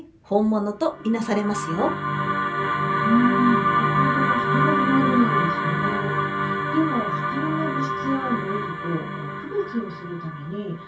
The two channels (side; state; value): both; identical; correlation 1.00